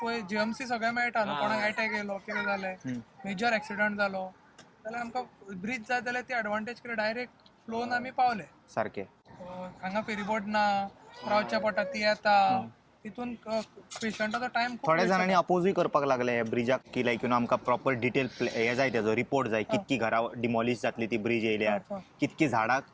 पळय जीएमसी सगळें मेळटा न्हू. कोणाक अटॅक येयलो कितें जालें मेजर एक्सिडंट जालो जाल्यार आमकां ब्रिज जाय जाल्यार ती एडवांटेज कितें डायरेक्ट फ्लोन आमी पावले सारकें. हांगा फेरीबोट ना रावच्या पडटा ती येता तितून पेशंटाचो टायम थोड्या जाणांनी अपोजूय करपाक लागले ह्या ब्रिजाक की लायक यू नो आमकां प्रॉपर डिटेल हे जाय तेजो रिपोर्ट जाय कितकी घरां डिमॉलिश जातली ती ब्रिज येयल्यार कितकी झाडां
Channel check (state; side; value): identical; both; correlation 1.00